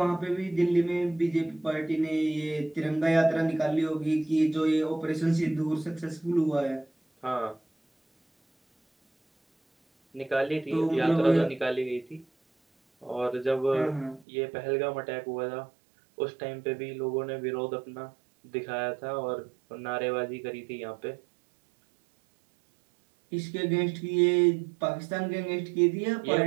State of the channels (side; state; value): left; drops out; at 14.2 s